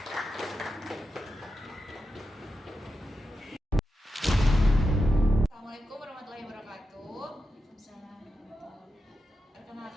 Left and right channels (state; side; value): normal; both; correlation 0.89